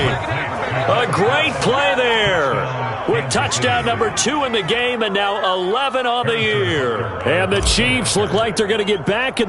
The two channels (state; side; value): identical; both; correlation 1.00